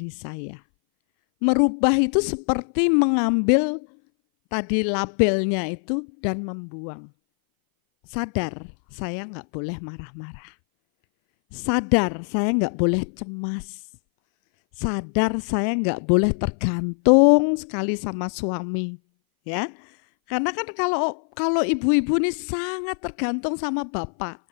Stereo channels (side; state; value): right; silent; 59 dB below the other